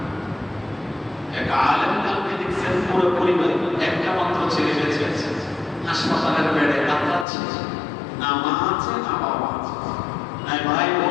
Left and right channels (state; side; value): drops out; right; at 7.2 s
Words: এক আলেম কাউকে দেখছেন পুরো পরিবার একটা মাত্র ছেলে বেঁচে আছে, হাসপাতালের বেডে কাতরাচ্ছে, না মা আছে না বাবা আছে, না ভাই